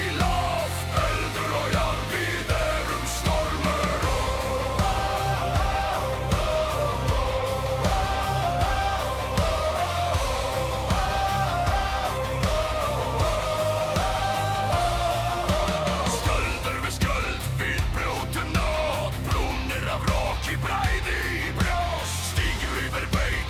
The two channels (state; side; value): identical; both; correlation 1.00